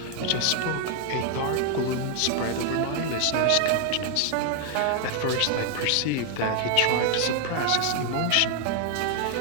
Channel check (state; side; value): different; both; correlation 0.00